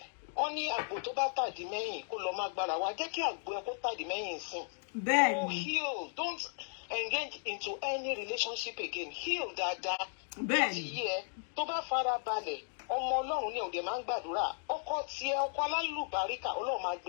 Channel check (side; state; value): right; silent; 54 dB below the other